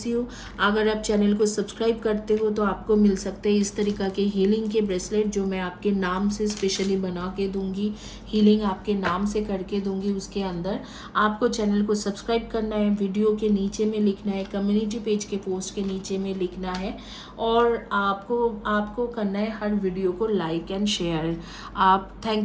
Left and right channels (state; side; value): identical; both; correlation 1.00